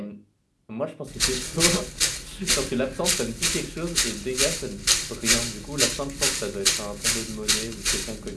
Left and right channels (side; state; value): both; identical; correlation 1.00